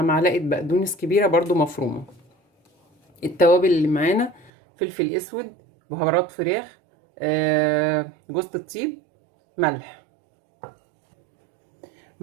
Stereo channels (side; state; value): left; drops out; at 4.5 s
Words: معلقه بقدونس كبيره برضو مفرومه. التوابل اللي معانا فلفل اسود، بهارات فراخ، جوز الطيب، ملح.